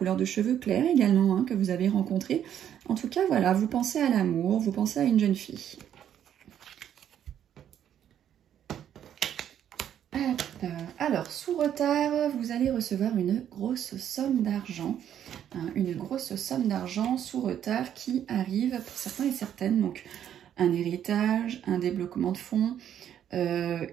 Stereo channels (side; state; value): left; quieter; 9.9 dB